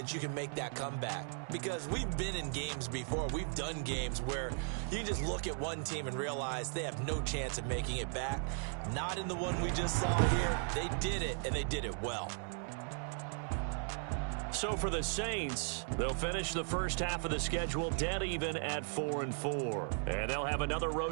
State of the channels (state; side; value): silent; left; 53 dB below the other